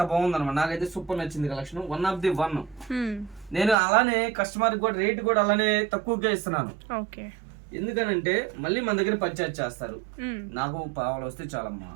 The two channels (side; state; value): left; drops out; at 3.8 s